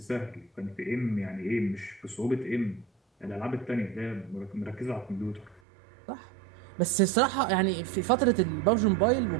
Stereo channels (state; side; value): drops out; left; at 5.6 s